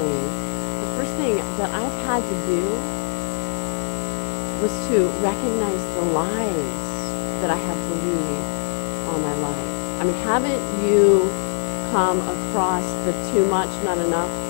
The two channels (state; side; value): silent; right; 64 dB below the other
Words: the first thing that I've had to do was to recognize the lies that I have believed all my life. I mean, haven't you come across the too much, not enough